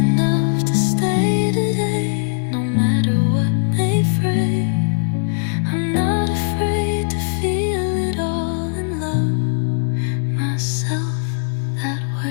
to stay today, no matter what may fray. I'm not afraid to feel it all and love myself that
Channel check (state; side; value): silent; right; 66 dB below the other